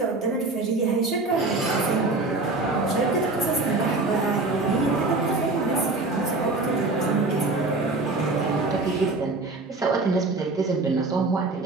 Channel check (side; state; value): left; quieter; 3.3 dB